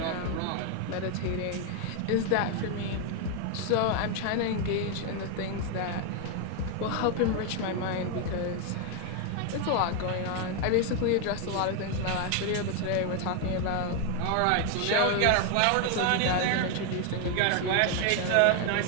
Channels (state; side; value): different; both; correlation 0.01